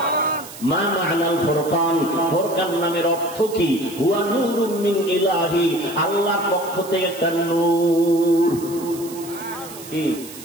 মা মা'নাল ফুরকান? ফুরকান নামের অর্থ কি? হুয়া নূরুম মিন ইলাহি, আল্লাহর পক্ষ থেকে একটা নূর। কি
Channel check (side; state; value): right; noise; hiss, 15 dB below the sound